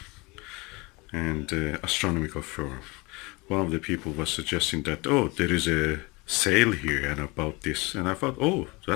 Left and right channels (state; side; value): quieter; right; 25.4 dB